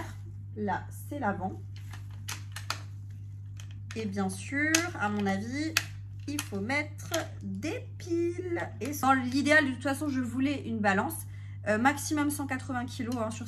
Là, c'est l'avant. Et bien sûr, à mon avis, il faut mettre des piles. Et dans l'idéal, de toute façon, je voulais une balance. Maximum 180 kg hein, sur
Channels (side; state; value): both; identical; correlation 1.00